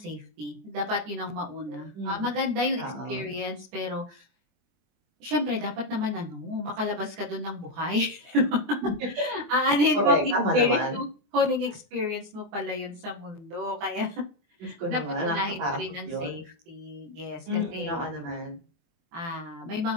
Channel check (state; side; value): late; left; 24 ms